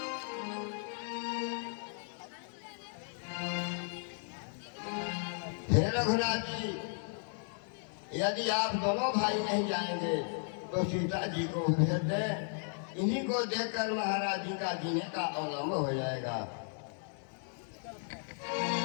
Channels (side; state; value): right; silent; 54 dB below the other